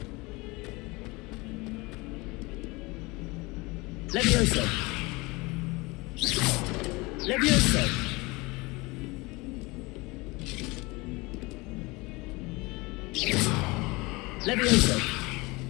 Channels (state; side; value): quieter; right; 24.2 dB